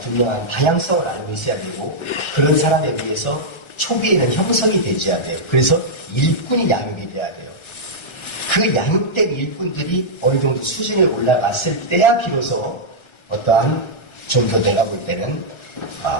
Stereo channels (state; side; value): late; right; 1.4 ms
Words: 방향성을 알고 있어야 되고 그런 사람에 의해서 초기에는 형성이 되어야 돼요. 그래서 일꾼이 양육이 돼야 돼요. 그 양육된 일꾼들이 어느 정도 수준에 올라갔을 때야 비로소 어떠한 좀 더 내가 볼 때는